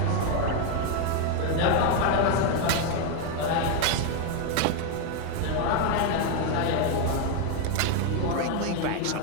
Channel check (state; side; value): different; both; correlation 0.01